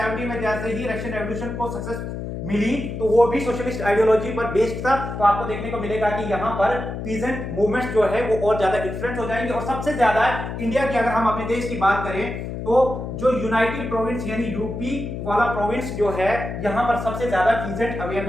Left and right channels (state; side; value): noise; left; hum, 6 dB below the sound